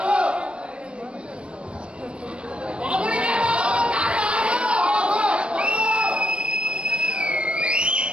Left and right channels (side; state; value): left; late; 0.058 ms